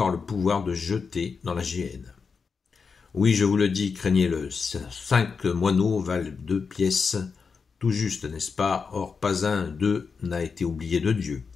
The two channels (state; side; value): quieter; right; 5.3 dB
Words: le pouvoir de jeter dans la géhenne. Oui, je vous le dis, craignez-le. 5 moineaux valent 2 pièces. Tout juste, n'est-ce pas? Or, pas un d'eux n'a été oublié de Dieu.